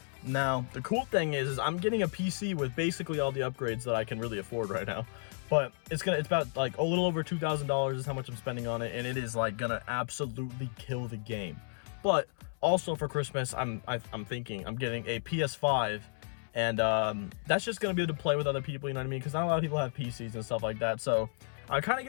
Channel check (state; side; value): silent; right; 56 dB below the other